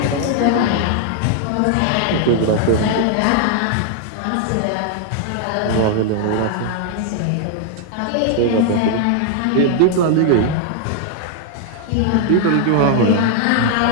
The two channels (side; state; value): both; different; correlation 0.00